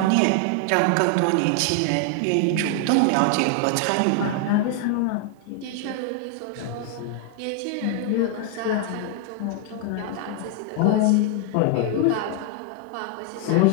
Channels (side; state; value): both; different; correlation 0.00